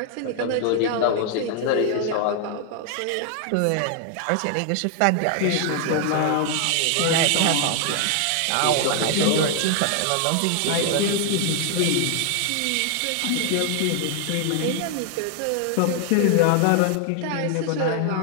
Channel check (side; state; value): both; different; correlation 0.00